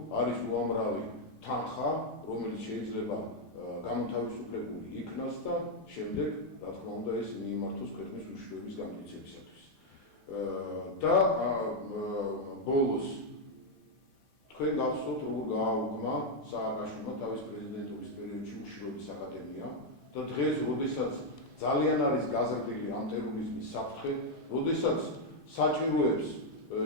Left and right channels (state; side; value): normal; both; correlation 0.01